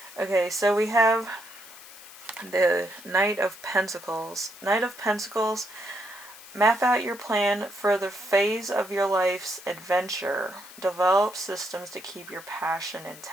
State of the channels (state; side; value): noise; left; hiss, 18 dB below the sound